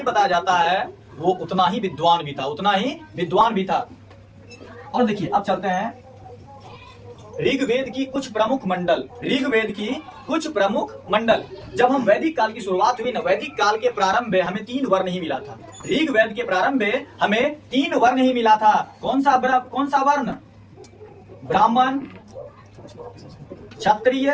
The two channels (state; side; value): identical; both; correlation 1.00